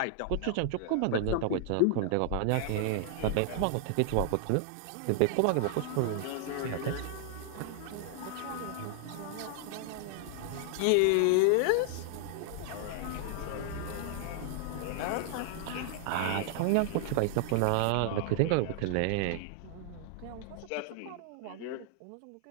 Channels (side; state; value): both; different; correlation 0.00